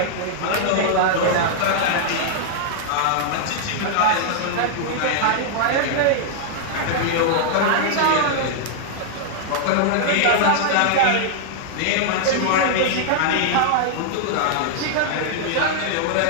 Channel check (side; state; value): both; different; correlation -0.01